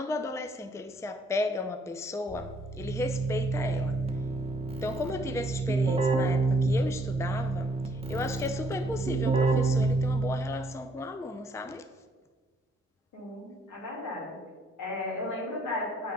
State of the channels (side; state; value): both; normal; correlation 0.66